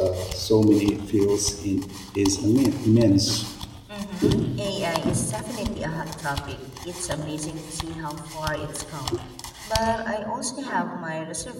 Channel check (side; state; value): both; identical; correlation 1.00